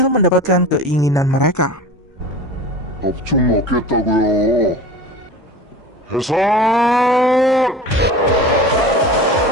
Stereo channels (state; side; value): normal; both; correlation 0.35